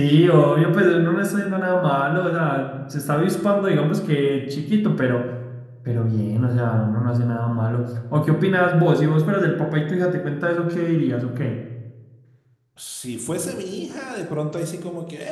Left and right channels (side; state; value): both; identical; correlation 1.00